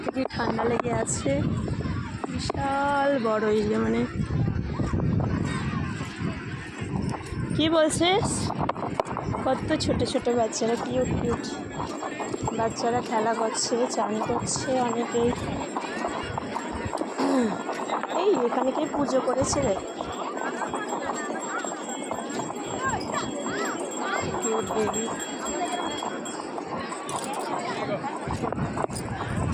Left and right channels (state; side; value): identical; both; correlation 1.00